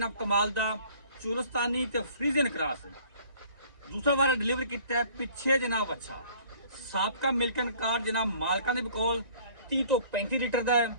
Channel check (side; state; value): left; late; 1.9 ms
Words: कमाल का चुलस्तानी ते फ्रीजियन क्रॉस दूसरा बार डिलीवर किया है पिछे जनाब। अच्छा साबका मिल्कन कार्ड जनाब मालकां दे कोल 30 तो 35 लीटर का है।